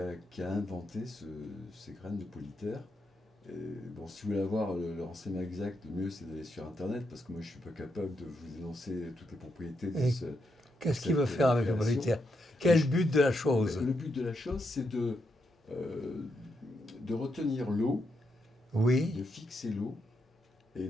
inventé ces graines de Polytère. Et bon, si vous voulez avoir le renseignement exact, le mieux c'est d'aller sur Internet, parce que moi je ne suis pas capable de vous énoncer toutes les propriétés de ce... Qu'est-ce qu'il veut faire avec le Polytère? Quel but de la chose? Le but de la chose, c'est de retenir l'eau, oui, de fixer l'eau, et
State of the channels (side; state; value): both; normal; correlation 0.81